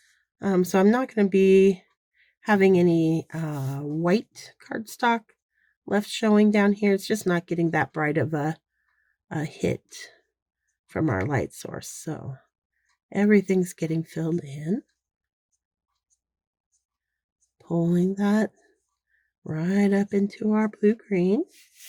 So I'm not going to be having any white cardstock left showing down here. It's just not getting that bright of a hit from our light source. So everything's getting filled in. Pulling that right up into our blue-green.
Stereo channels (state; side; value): identical; both; correlation 1.00